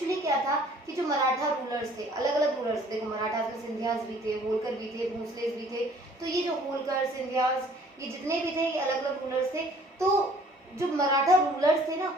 क्या था कि जो मराठा रूलर्स थे, अलग अलग रूलर्स, देखो मराठास में सिंधियास भी थे, होलकर भी थे, भोसलेस भी थे। तो ये जो होलकर, सिंधियास, ये जितने भी थे ये अलग अलग रूलर्स थे। तो जो मराठा रूलर्स थे ना,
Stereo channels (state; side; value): normal; both; correlation 0.55